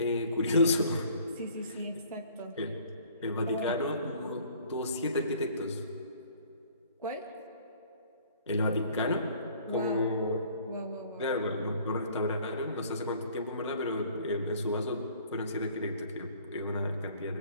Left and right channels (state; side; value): inverted; both; correlation -0.54